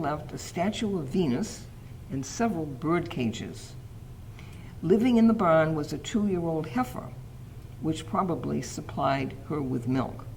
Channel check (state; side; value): identical; both; correlation 1.00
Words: a statue of Venus and several bird cages. Living in the barn was a 2-year-old heifer, which probably supplied her with milk.